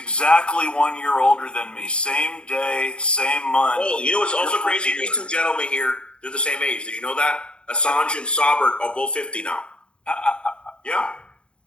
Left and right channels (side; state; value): right; late; 0.055 ms